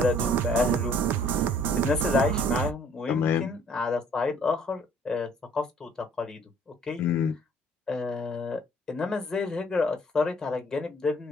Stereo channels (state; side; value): normal; both; correlation 0.58